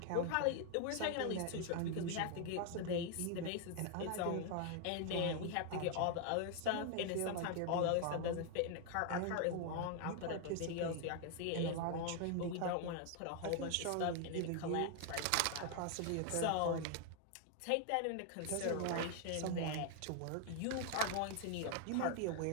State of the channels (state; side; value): different; both; correlation 0.00